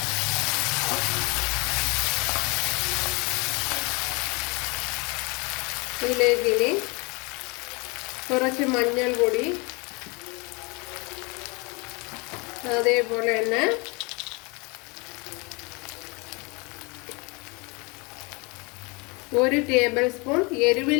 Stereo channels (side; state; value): right; quieter; 28.8 dB